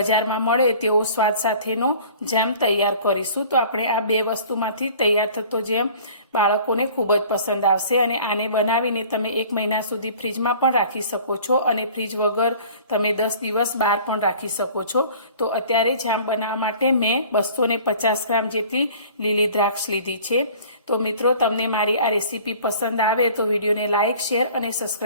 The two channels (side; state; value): both; inverted; correlation -0.47